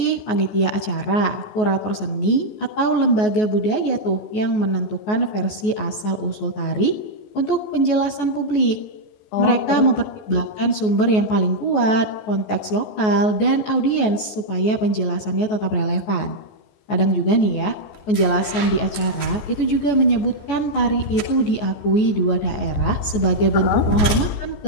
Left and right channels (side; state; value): right; late; 14 ms